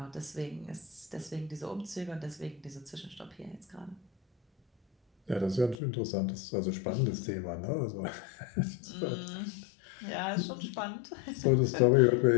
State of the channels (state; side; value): drops out; right; at 5.8 s